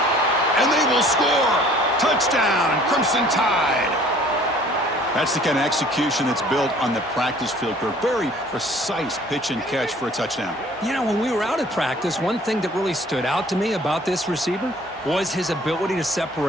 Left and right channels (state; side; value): normal; both; correlation 0.53